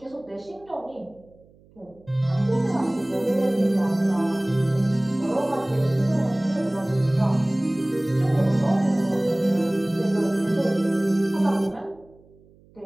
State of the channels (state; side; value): noise; right; hum, 28 dB below the sound